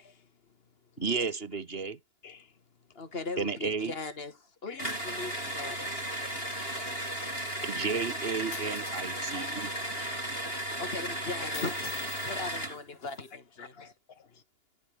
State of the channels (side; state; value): right; late; 2.9 ms